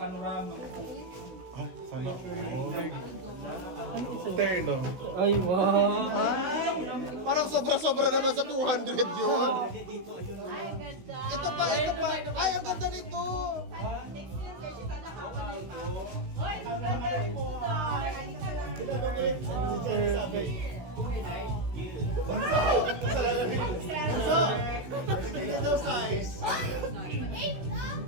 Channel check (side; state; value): left; late; 16 ms